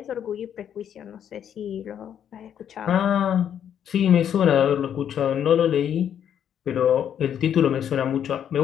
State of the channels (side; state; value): right; quieter; 9.2 dB